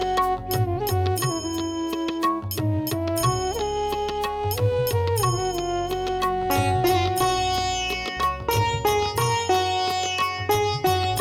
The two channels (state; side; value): identical; both; correlation 1.00